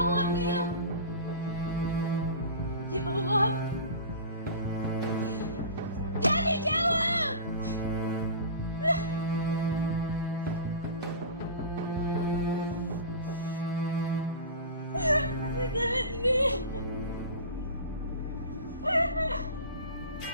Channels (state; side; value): inverted; both; correlation -0.33